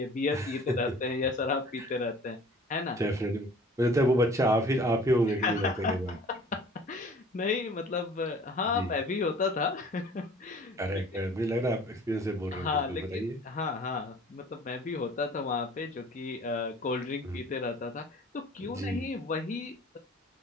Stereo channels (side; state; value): both; normal; correlation 0.48